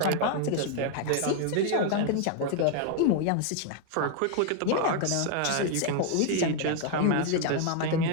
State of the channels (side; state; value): both; different; correlation 0.00